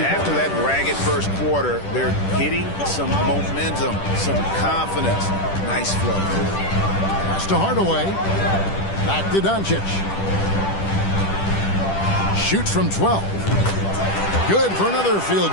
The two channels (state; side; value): late; right; 10 ms